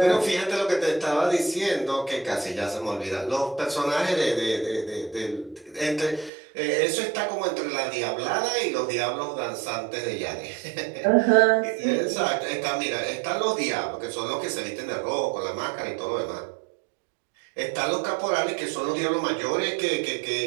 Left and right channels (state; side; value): drops out; left; at 6.3 s